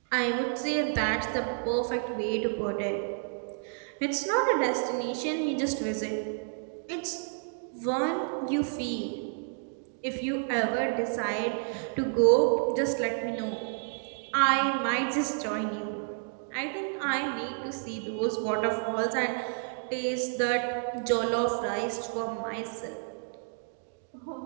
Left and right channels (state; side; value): silent; left; 58 dB below the other